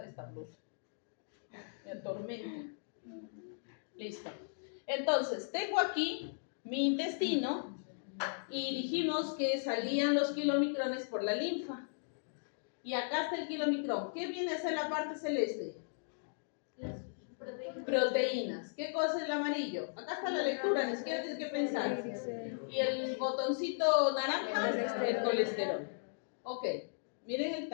esta blusa. Me atormenta. Listo. Entonces, tengo aquí mi intestino y dijimos que salían los kilomicrones por la linfa. Y acá está el kilomicrón. ¿Qué viene a ser la parte celeste? Las proteínas. Proteínas. ¿Qué cosa es el amarillo? Acá está la lectura, ni siquiera tienes que pensar. Y el botoncito naranja, el colesterol. Ok, miren el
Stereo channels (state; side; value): silent; right; digital silence